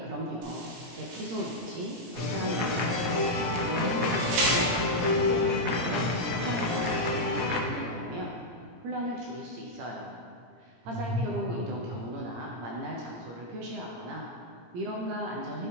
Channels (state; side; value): late; left; 17 ms